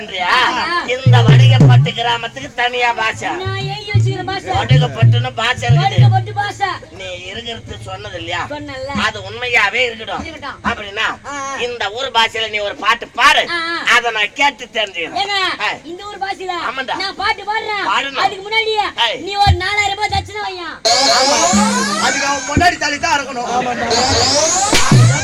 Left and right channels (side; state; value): both; identical; correlation 1.00